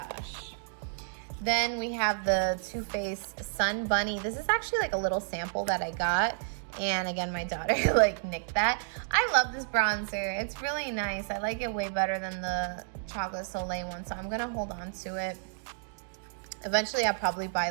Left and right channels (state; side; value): silent; left; digital silence